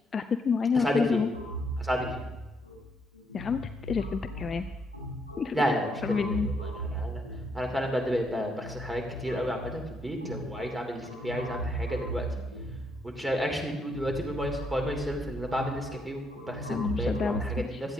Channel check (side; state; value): both; normal; correlation 0.75